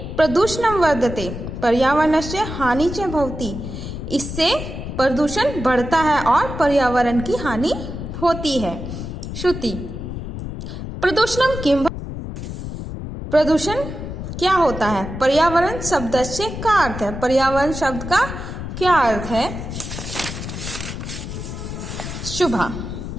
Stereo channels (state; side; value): noise; left; rumble, 7 dB below the sound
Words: प्रदूषणं वर्धते पर्यावरणस्य हानि च भवति, इससे प्रदूषण बढ़ता है और पर्यावरण की हानि होती है। श्रुति: प्रदूषणं किम, प्रदूषण क्या होता है। पर्यावरण शब्द से क्या अर्थ है, पर्यावरण शब्द का क्या अर्थ है। शुभा: